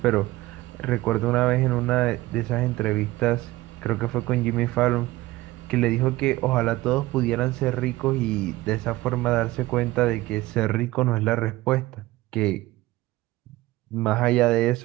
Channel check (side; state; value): left; quieter; 18.4 dB